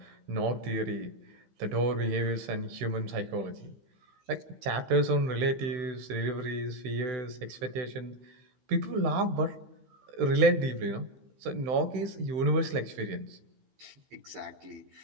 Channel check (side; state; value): left; late; 15 ms